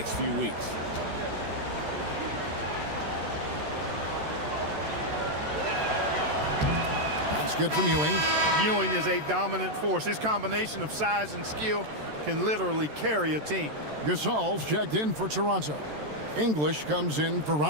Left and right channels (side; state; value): left; late; 13 ms